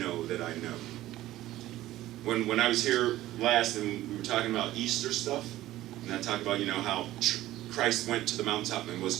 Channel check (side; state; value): left; quieter; 15.2 dB